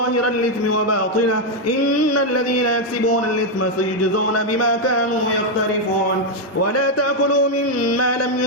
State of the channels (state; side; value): normal; both; correlation 0.02